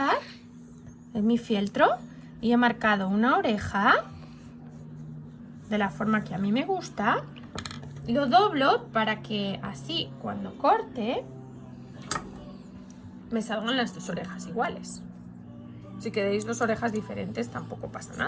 en mi fieltro, y he marcado una oreja de la forma que a mí me gusta. Lo doblo para que así cuando corte me salgan las dos orejas iguales. Si queréis dos orejas diferentes tampoco pasa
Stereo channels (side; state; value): both; identical; correlation 1.00